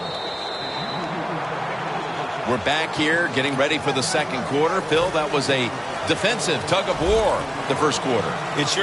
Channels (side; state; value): both; identical; correlation 1.00